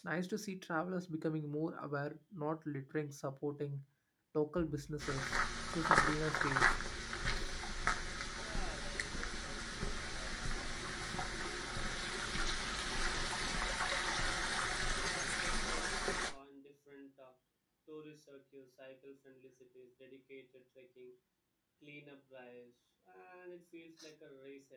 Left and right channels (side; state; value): both; identical; correlation 1.00